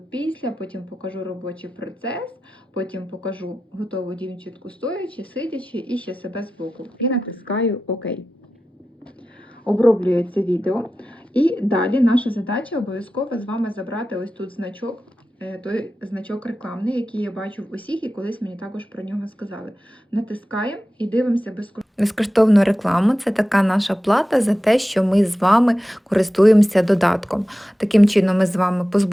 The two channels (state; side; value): normal; both; correlation 0.93